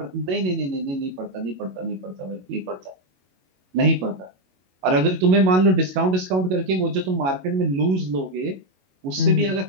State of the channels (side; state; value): left; late; 22 ms